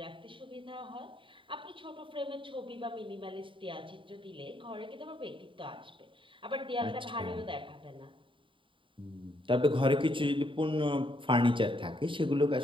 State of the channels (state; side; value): late; left; 0.25 ms